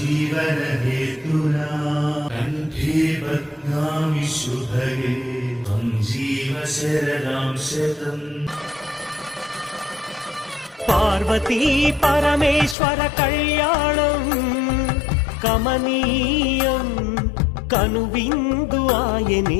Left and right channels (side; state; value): right; drops out; at 12.8 s